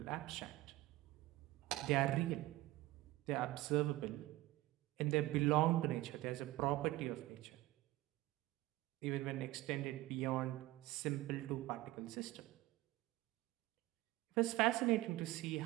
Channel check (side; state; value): left; quieter; 17.8 dB